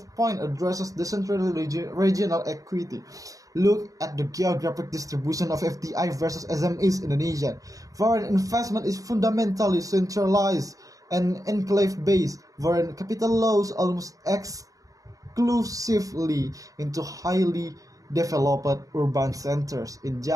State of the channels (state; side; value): late; left; 0.17 ms